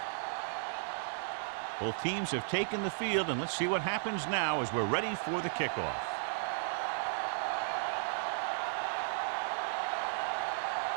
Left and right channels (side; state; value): left; silent; digital silence